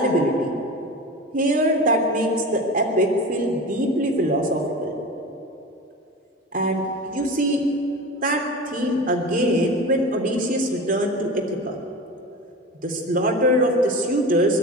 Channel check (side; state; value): both; normal; correlation 0.31